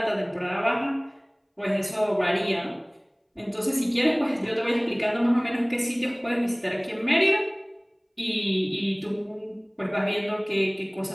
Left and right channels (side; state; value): both; identical; correlation 1.00